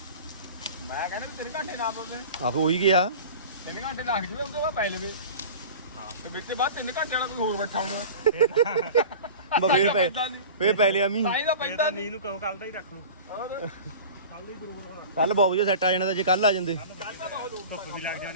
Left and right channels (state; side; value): inverted; both; correlation -0.37